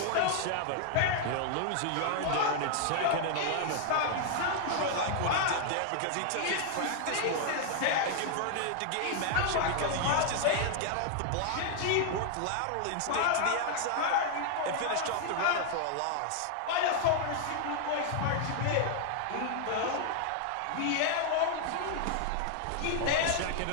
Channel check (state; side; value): different; both; correlation 0.00